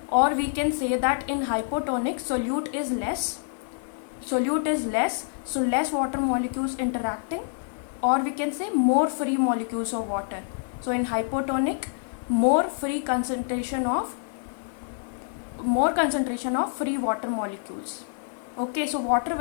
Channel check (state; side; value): silent; right; digital silence